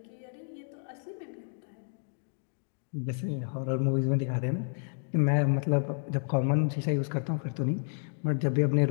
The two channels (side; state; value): right; silent; 57 dB below the other